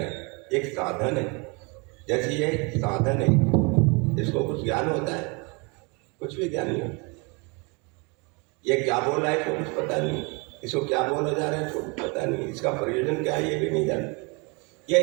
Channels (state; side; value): quieter; left; 30.6 dB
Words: एक साधन है। जैसे ये साधन है, इसको कुछ ज्ञान होता है? कुछ भी ज्ञान नहीं होता। ये क्या बोल रहा है इसको कुछ पता नहीं, इसको क्या बोला जा रहा है इसको कुछ पता नहीं, इसका प्रयोजन क्या है ये भी नहीं जानते।